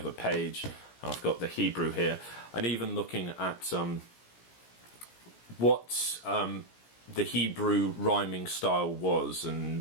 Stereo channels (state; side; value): late; right; 17 ms